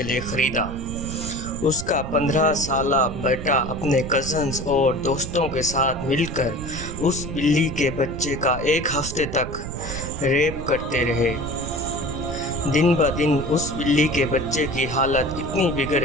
لیے خریدا. اس کا 15 سالہ بیٹا اپنے کزنز اور دوستوں کے ساتھ مل کر اس بلی کے بچے کا ایک ہفتے تک ریپ کرتے رہے. دن بہ دن اس بلی کے بچے کی حالت اتنی بگڑ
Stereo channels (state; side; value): noise; right; rumble, 8 dB below the sound